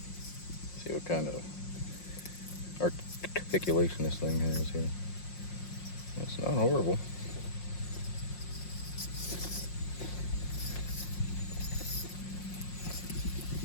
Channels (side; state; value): right; late; 5.6 ms